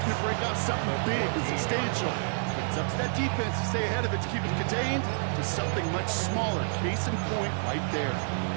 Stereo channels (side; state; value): left; silent; digital silence